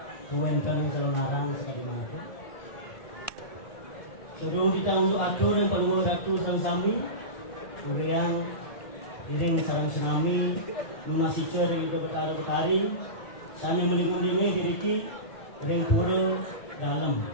kuwenten sareng sekali mangkin. Sebelum kita untuk atur yang perlu ratu sareng sami, kemudian dereng sareng sami munasicer itu betari sana melingung-lingung diki dereng pura dalam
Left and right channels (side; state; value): right; late; 1.5 ms